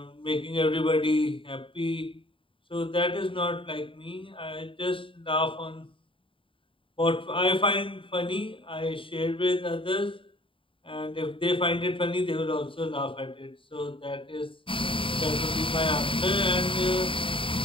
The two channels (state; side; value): late; right; 0.25 ms